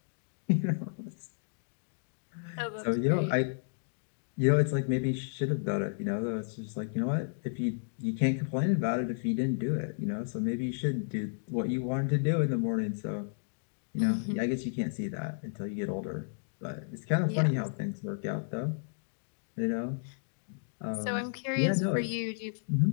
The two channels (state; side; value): silent; right; digital silence